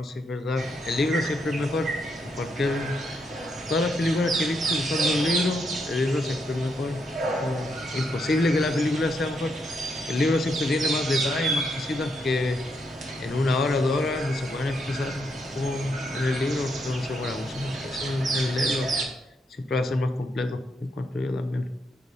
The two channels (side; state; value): both; normal; correlation 0.78